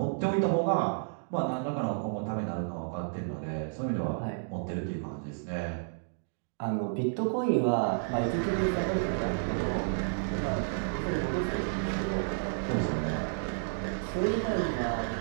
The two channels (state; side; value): silent; left; digital silence